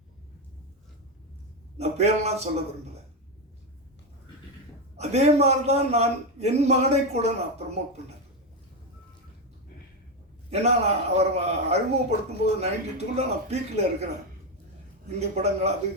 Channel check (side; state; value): both; normal; correlation 0.09